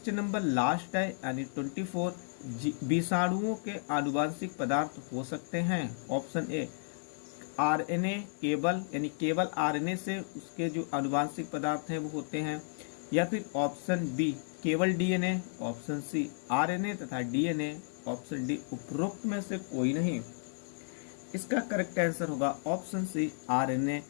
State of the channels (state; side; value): silent; right; 56 dB below the other